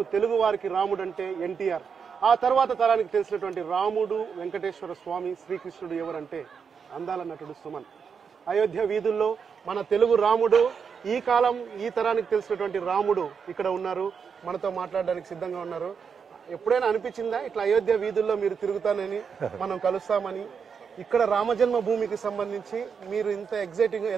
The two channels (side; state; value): left; quieter; 6.3 dB